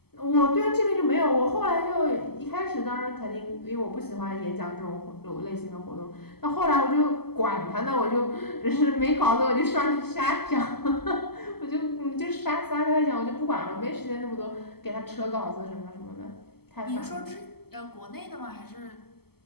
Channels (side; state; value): right; late; 0.96 ms